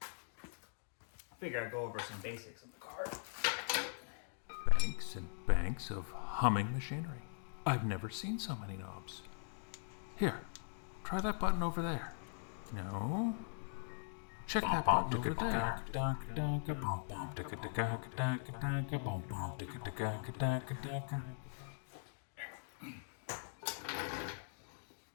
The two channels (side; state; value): right; silent; digital silence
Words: I figure I'd go over some basics of the car. Banks and banks of humming machinery. I've never seen so many knobs. Here, try that button over there. No. Check that button over there.